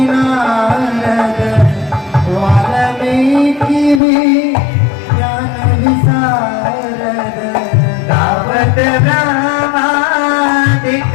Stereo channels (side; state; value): right; drops out; at 4.0 s